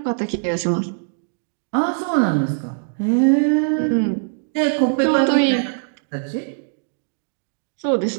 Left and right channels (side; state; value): left; silent; digital silence